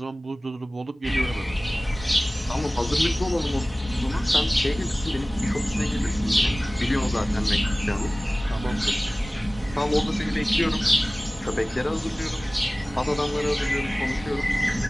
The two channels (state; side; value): normal; both; correlation 0.98